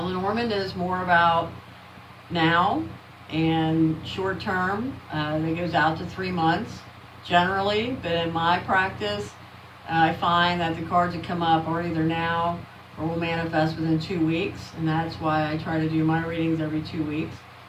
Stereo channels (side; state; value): both; identical; correlation 1.00